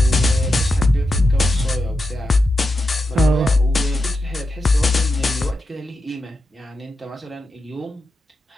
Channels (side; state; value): both; normal; correlation 0.88